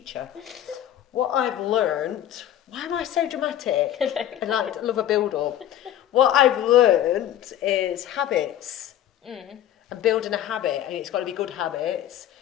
What I've learned. Why am I so dramatic? I love a build-up. What I've learned is habits. And building a habit, and it's got to be good habits,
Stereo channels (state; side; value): quieter; right; 11.6 dB